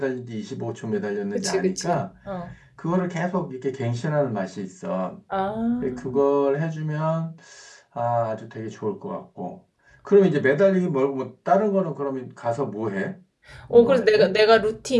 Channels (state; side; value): identical; both; correlation 1.00